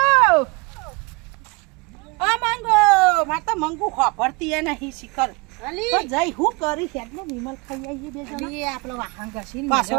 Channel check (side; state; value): left; quieter; 27.5 dB